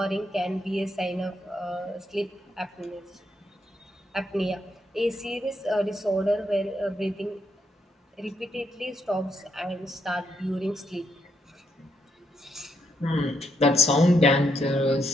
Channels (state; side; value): normal; both; correlation 0.77